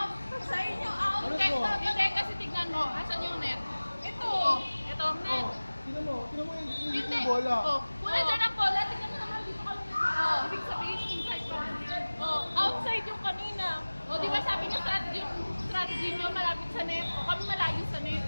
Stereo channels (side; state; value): both; inverted; correlation -1.00